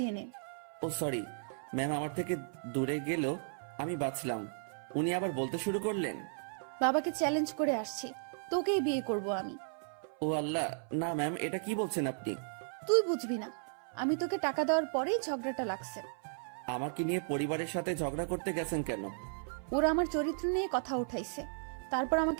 নে। ও সরি ম্যাম, আমার থেকে দূরে গেল, আমি বাঁচলাম। উনি আবার বলতে শুরু করলেন, বাবাকে চ্যালেঞ্জ করে আসছি, তোকেই বিয়ে করব আমি। ও আল্লাহ, না ম্যাম, এটা কি বলছেন আপনি? তুই বুঝবি না, আমি তোকে টাকা দেওয়ার পরেই ঝগড়াটা লাগছে। আমাকে নিয়ে পরিবারের সাথে ঝগড়া করতে গেছেন কেন? ওরা আমার চরিত্র নিয়ে কথা উঠাইছে, তারপর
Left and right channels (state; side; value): silent; left; 54 dB below the other